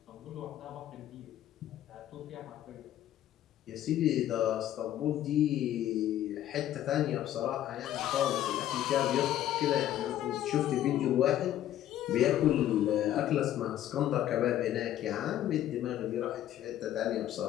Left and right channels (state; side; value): quieter; right; 12.2 dB